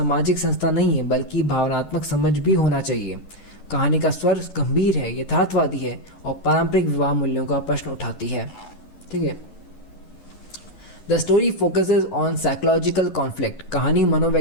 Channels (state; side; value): late; right; 11 ms